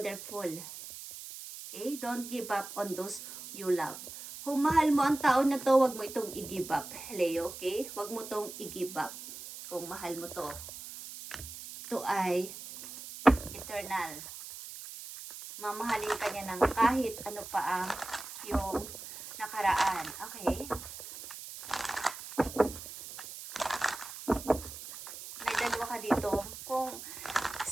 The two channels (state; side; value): noise; right; hiss, 12 dB below the sound